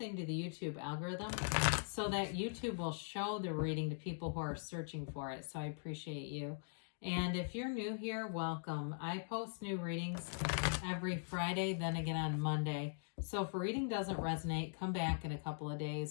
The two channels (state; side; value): silent; right; digital silence